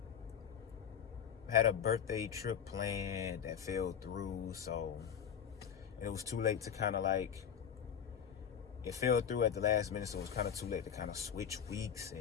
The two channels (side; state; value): right; quieter; 8.3 dB